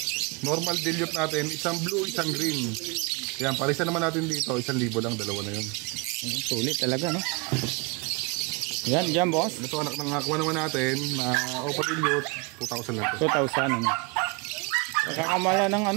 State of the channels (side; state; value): left; quieter; 28.4 dB